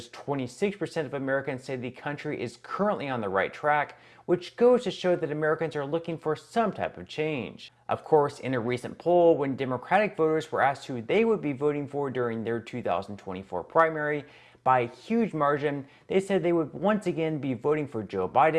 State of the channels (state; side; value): identical; both; correlation 1.00